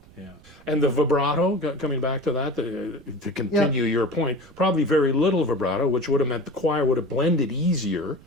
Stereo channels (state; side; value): noise; right; rumble, 24 dB below the sound